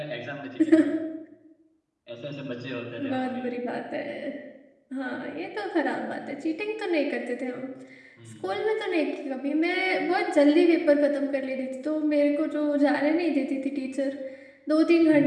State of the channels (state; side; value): identical; both; correlation 1.00